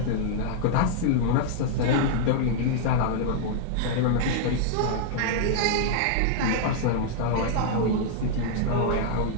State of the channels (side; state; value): both; different; correlation -0.01